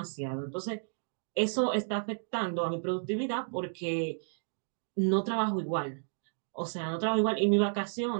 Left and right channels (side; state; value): left; silent; digital silence